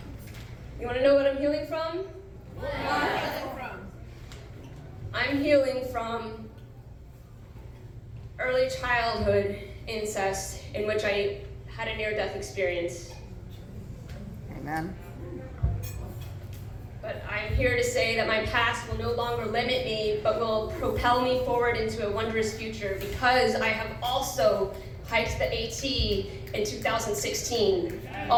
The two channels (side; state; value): both; identical; correlation 1.00